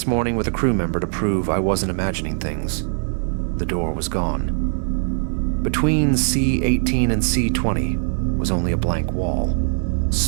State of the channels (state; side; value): silent; left; 65 dB below the other